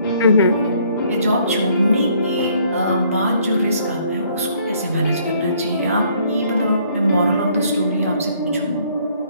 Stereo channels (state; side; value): inverted; both; correlation -0.64